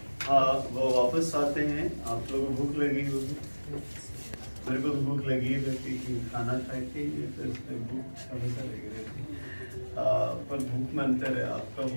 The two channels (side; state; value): both; inverted; correlation -1.00